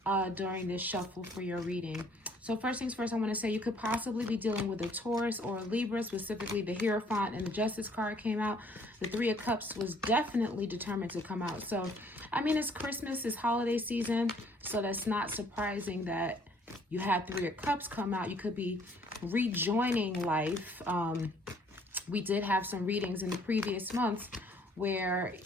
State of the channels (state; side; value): normal; both; correlation 0.61